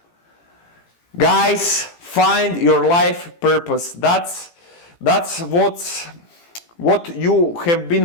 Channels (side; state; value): right; late; 18 ms